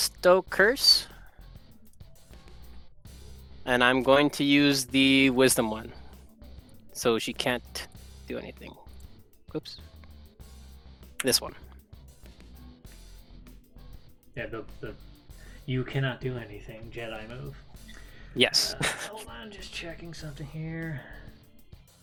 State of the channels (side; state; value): both; identical; correlation 1.00